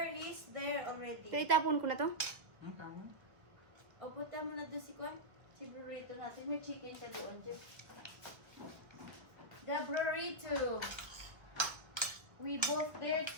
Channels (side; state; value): left; late; 1.3 ms